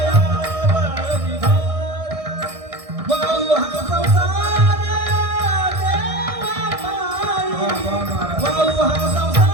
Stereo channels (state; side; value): late; left; 1.6 ms